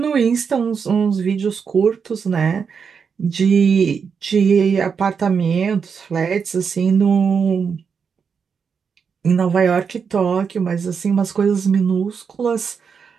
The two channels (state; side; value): quieter; left; 6.2 dB